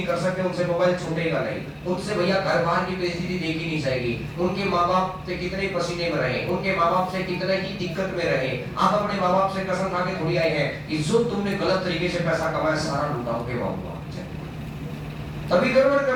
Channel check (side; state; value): both; identical; correlation 1.00